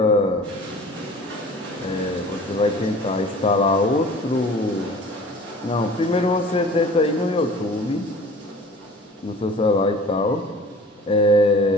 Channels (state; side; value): normal; both; correlation 0.45